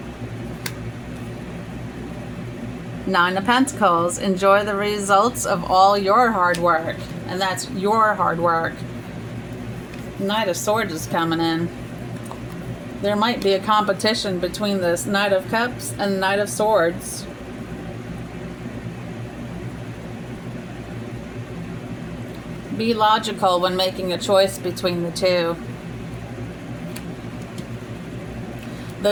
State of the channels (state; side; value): identical; both; correlation 1.00